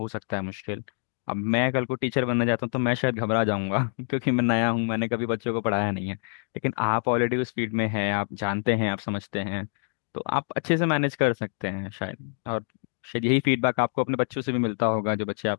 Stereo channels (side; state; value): right; silent; 59 dB below the other